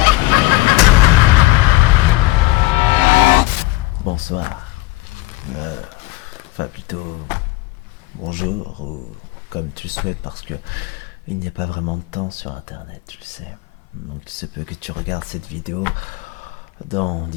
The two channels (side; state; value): right; quieter; 19.6 dB